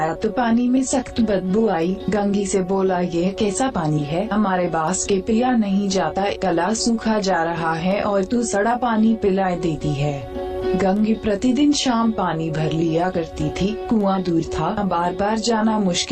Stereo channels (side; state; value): both; identical; correlation 1.00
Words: तो पानी में सख्त बदबू आई। गंगी से बोला, यह कैसा पानी है, हमारे बास के पिया नहीं जाता, गला सूखा जा रहा है और तू सड़ा पानी पिला देती है। गंगी प्रतिदिन शाम पानी भर लिया करती थी। कुआं दूर था, बार बार जाना